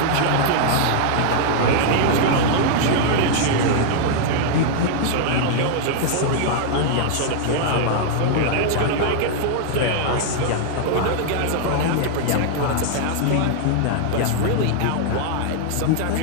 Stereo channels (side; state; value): both; different; correlation -0.01